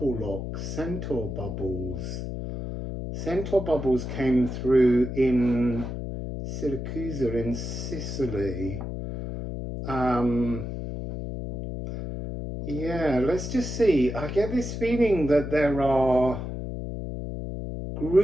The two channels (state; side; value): noise; left; hum, 6 dB below the sound